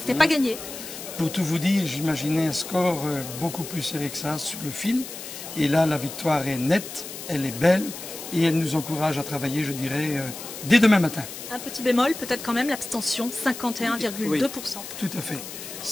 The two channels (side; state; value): left; noise; hiss, 11 dB below the sound